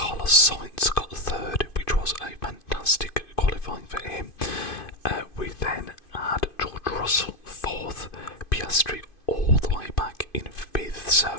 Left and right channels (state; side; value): late; right; 2.5 ms